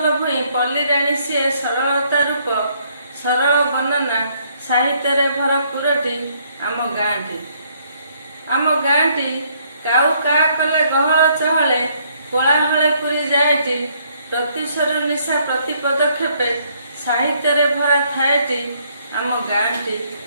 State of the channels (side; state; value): both; inverted; correlation -0.67